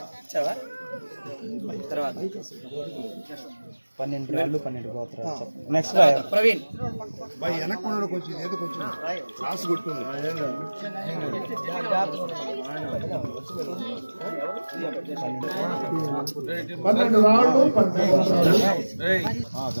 తర్వాత 12 రాళ్ళు 12 గోత్రాలు. నెక్స్ట్ ప్రవీణ్ వెనక్కున్నాడు కొంచెం ఏదో కొంచెం రాసి కొట్టుకుంది. 12 రాళ్ళు 12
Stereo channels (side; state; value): both; inverted; correlation -1.00